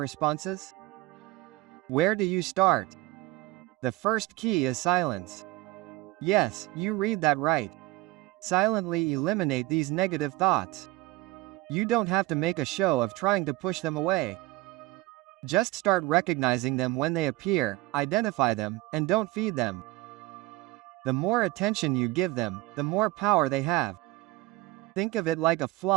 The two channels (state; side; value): quieter; left; 19.7 dB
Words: Where do you start? The first key is silence. Yes, you read that right. Silently eliminate these negative thoughts. You don't have to make a show of trying to push them away. Just start recognizing them when they appear, identify them, and don't feed them. The more attention you give them, the more power they have. Think of it like a